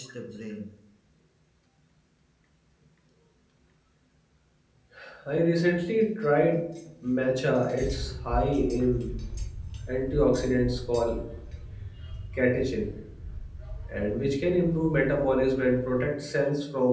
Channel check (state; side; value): identical; both; correlation 1.00